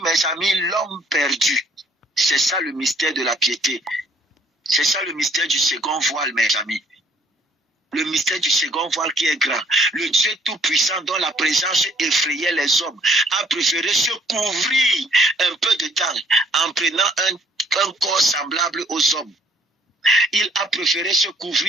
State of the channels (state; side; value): normal; both; correlation 0.61